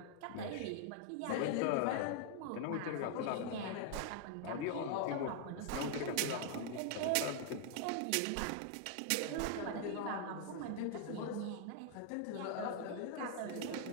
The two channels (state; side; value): different; both; correlation 0.00